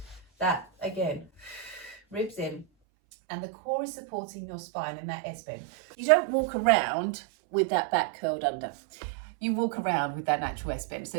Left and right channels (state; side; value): drops out; left; at 2.7 s